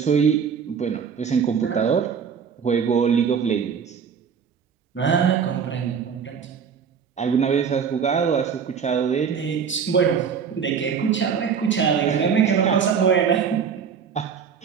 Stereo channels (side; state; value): left; quieter; 6.8 dB